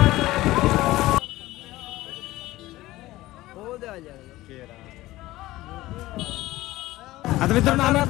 आता मित्रांनो आम्ही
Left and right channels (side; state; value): right; quieter; 17.3 dB